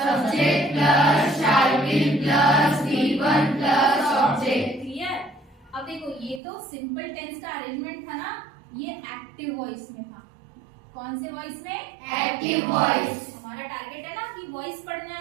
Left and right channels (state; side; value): drops out; left; at 6.4 s